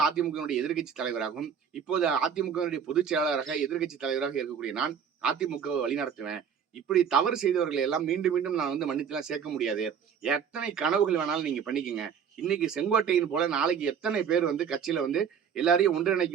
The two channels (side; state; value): left; quieter; 7.5 dB